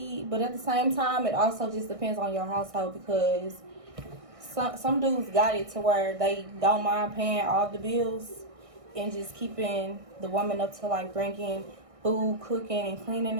but at the same time, it also just depends on your household because some dudes got it to where they don't mind paying all the bills and just keeping the woman up to like bringing food, cooking, and cleaning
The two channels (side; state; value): left; late; 1.6 ms